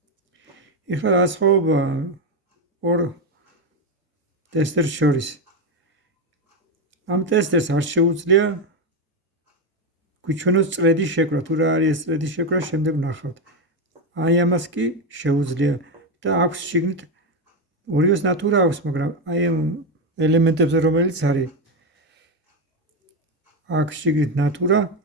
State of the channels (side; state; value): both; normal; correlation 0.10